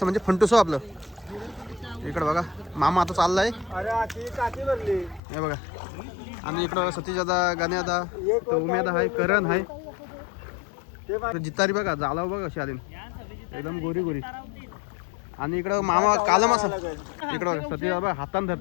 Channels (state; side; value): drops out; right; at 5.2 s